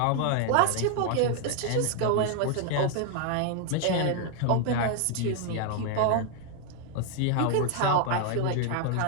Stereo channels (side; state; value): both; different; correlation 0.00